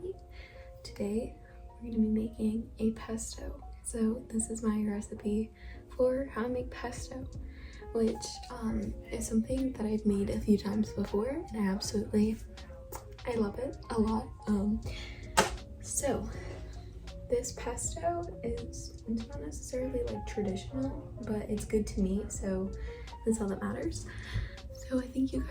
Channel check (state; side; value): identical; both; correlation 1.00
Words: me. Today we're going to be making a pesto. So this is my recipe for how to make pesto, which is something that I've made a few times before, and I love it a lot. So this pesto it's not necessarily like traditional, but it's good to me, so that's all that matters. So I think you